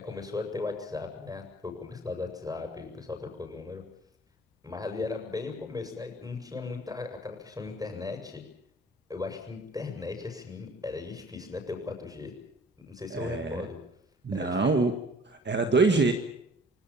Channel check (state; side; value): normal; both; correlation 0.51